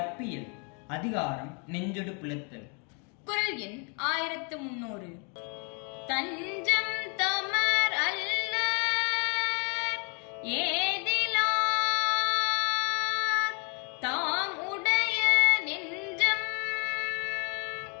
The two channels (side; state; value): right; quieter; 36.6 dB